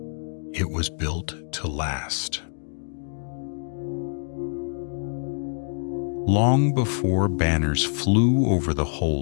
It was built to last. Long before banners flew over the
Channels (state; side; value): silent; right; digital silence